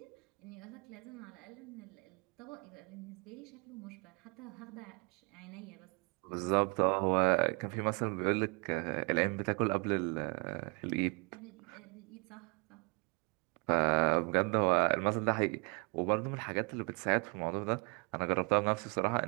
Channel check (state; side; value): quieter; left; 32.5 dB